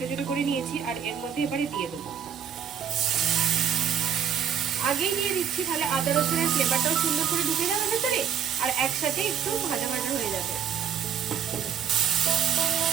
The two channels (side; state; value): left; quieter; 8.3 dB